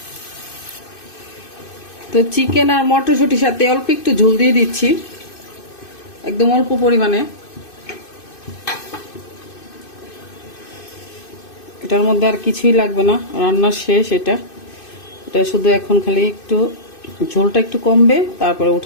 তো চিকেন আর মটরশুটির সাথে অল্প একটু ঝোল দিয়ে দিচ্ছি, একদম অল্প পরিমাণে। এটার মধ্যে আর কিছুই লাগবে না, রান্না শেষ। এটা শুধু এখন খালি একটু ঝোলটা একটু কমবে, তারপরে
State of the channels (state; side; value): late; right; 2.6 ms